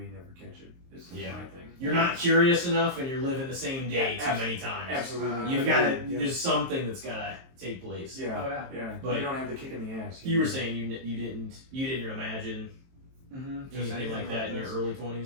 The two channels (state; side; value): late; left; 23 ms